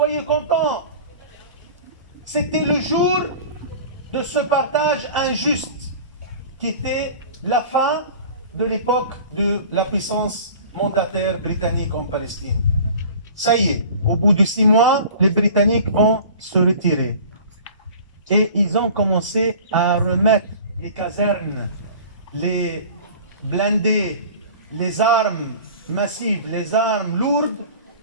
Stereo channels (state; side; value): inverted; both; correlation -0.42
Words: contents. C'était le jour de ce partage injuste qui était la fin de l'époque de la puissance mandataire britannique en Palestine. Ça y est, au bout de 6 mois, les Britanniques vont se retirer. Et ils ont commencé à remettre les casernes, les blindés, les armes massives, les armes lourdes